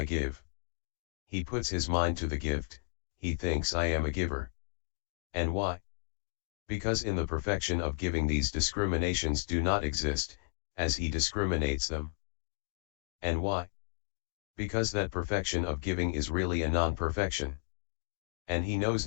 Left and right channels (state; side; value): silent; right; digital silence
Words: give. He puts his mind to the gift, he thinks I am a giver. And why? Because in the perfection of giving these discriminations do not exist, as he discriminates them. And why? Because that perfection of giving is really a non-perfection. And he knows